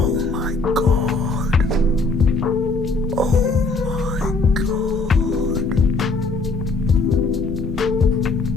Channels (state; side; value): quieter; right; 3.6 dB